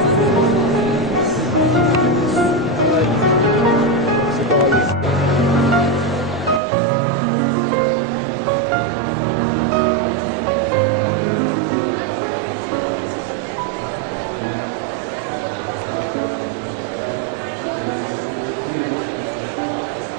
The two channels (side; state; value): left; drops out; at 6.6 s